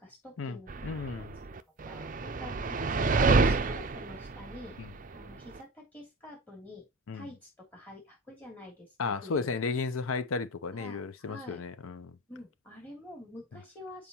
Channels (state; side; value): normal; both; correlation 0.33